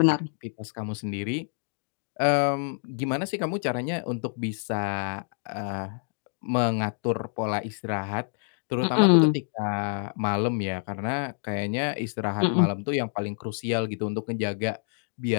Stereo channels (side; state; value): right; silent; 60 dB below the other